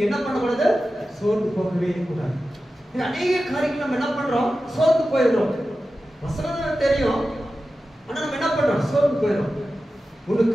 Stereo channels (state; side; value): normal; both; correlation 0.93